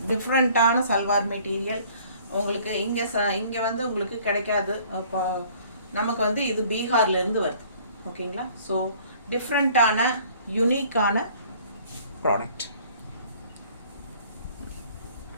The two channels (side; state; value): both; inverted; correlation -0.55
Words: டிஃப்ரெண்ட்டான சல்வார் மெட்டீரியல். உங்களுக்கு இங்கே வந்து உங்களுக்கு கிடைக்காது. இப்போ நமக்கு வந்து இது பீகார்லேருந்து வருது. ஓகேங்களா? ஸோ டிஃப்ரெண்ட்டான யூனிக்கான ப்ராடக்ட்.